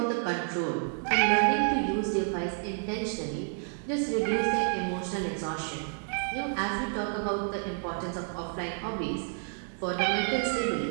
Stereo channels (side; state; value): left; silent; 58 dB below the other